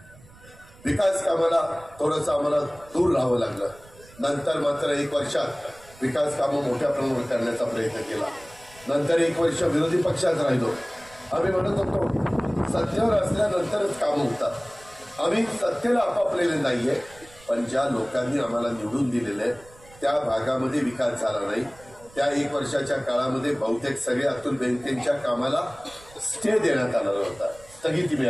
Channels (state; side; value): noise; right; rumble, 24 dB below the sound